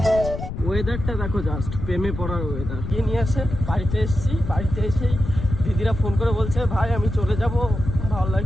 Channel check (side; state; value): left; noise; rumble, 6 dB below the sound